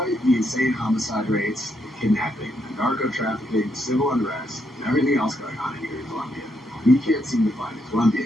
the insane homicide rates, the kidnapping, the narco trafficking, civil unrest, and everything else going on here in Colombia, You can't seem to find a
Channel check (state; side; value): normal; both; correlation 0.77